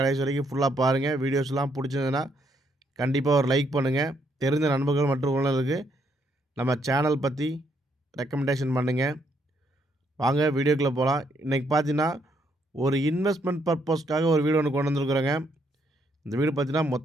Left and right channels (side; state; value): both; normal; correlation 0.73